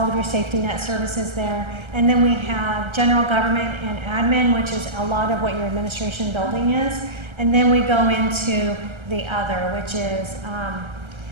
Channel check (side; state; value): left; late; 1.3 ms